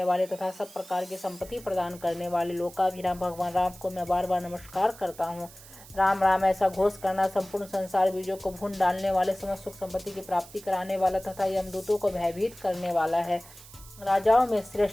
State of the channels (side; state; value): right; noise; hiss, 19 dB below the sound